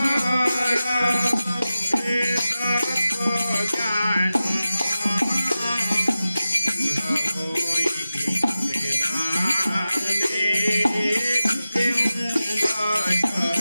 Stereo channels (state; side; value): inverted; both; correlation -0.94